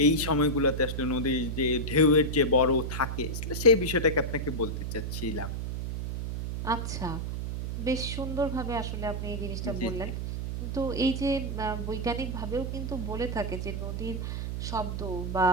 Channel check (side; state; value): right; noise; hum, 4 dB below the sound